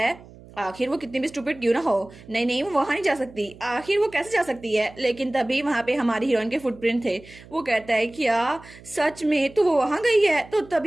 आखिर वो कितनी भी स्टूपिड क्यों ना हो, नहीं नहीं वो वहां नहीं जा सकती, आखिर वो कैसे जा सकती है। लेकिन तभी वहां पे हमारी हीरोइन के फुटप्रिंट थे। वो कहता है क्या सच में तो वो वहां गई है। तो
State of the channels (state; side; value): noise; right; hum, 21 dB below the sound